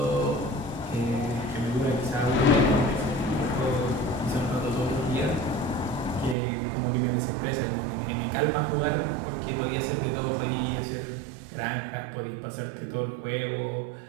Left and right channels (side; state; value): left; drops out; at 6.4 s